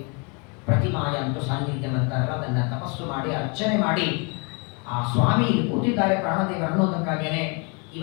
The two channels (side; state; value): right; quieter; 32.4 dB